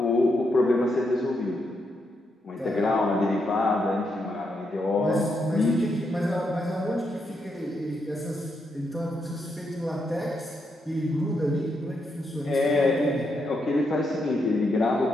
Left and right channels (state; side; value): normal; both; correlation 0.81